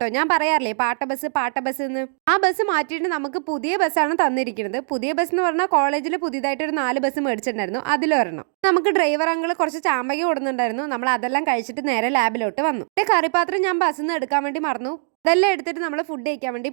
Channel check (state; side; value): silent; left; digital silence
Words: ഞാൻ പറയാറില്ലേ പാട്ട ബസ് എന്ന്. ആ ബസ് മാറ്റിയിട്ട് നമുക്ക് പുതിയ ബസ്സാണ് തന്നിരിക്കുന്നത്. പുതിയ ബസ് എന്ന് പറഞ്ഞാൽ കോളേജിൽ പുതിയതായിട്ട് ഒരു 4 ബസ് മേടിച്ചിട്ടുണ്ടായിരുന്നു. അതിലൊരെണ്ണം. നമുക്ക് ഡ്രൈവർ അങ്കിൾ കുറച്ച് ചാമ്പക കൊടുക്കുന്നുണ്ടായിരുന്നു. നമ്മൾ അതെല്ലാം കഴിച്ചിട്ട് നേരെ ലാബിലോട്ട് വന്നു. കറിപ്പാത്രം ഞാൻ ബസ്സിൽ നിന്ന് എടുക്കാൻ വേണ്ടി മറന്നു. ഇതെല്ലാം എടുത്തിട്ട് നമ്മൾ ഫുഡ് കഴിക്കാൻ വേണ്ടി